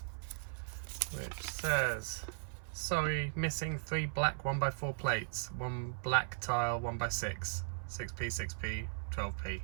which says, sorry, missing 3 black 1x4 plates, 1 black tile 1x6, 6p, 6p, 12p.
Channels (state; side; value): silent; left; 53 dB below the other